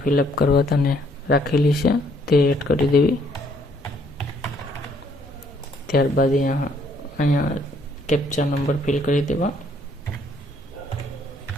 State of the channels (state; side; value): normal; both; correlation 0.66